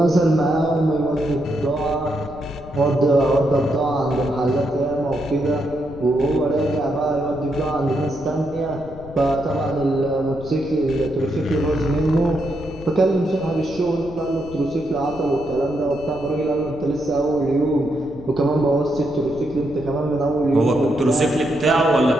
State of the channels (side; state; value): left; noise; rumble, 16 dB below the sound